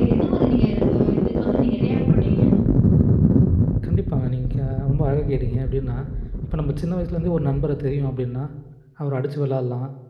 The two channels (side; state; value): both; identical; correlation 1.00